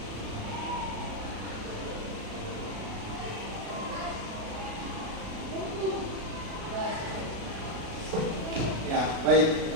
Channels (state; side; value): late; left; 36 ms